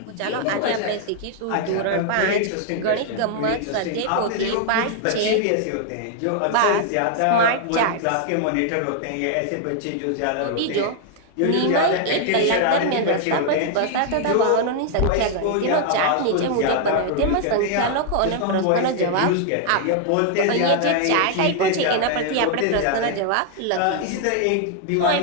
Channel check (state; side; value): different; both; correlation 0.00